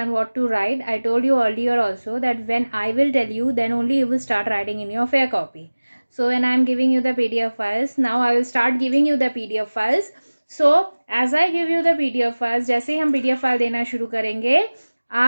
what to write. I told you earlier also that when I will tell you, then only you will start writing in your fair copy. So when I am giving you the PDF files, now I will start giving you the PDF files. So as I give you the PDF files, जैसे ही हम PDF file देना शुरू करेंगे,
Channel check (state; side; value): inverted; both; correlation -1.00